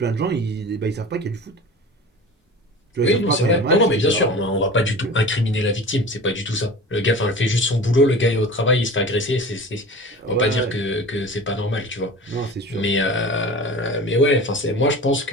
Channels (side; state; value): both; normal; correlation 0.37